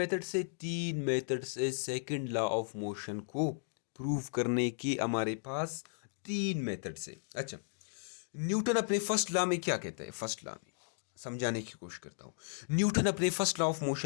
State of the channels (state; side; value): silent; right; digital silence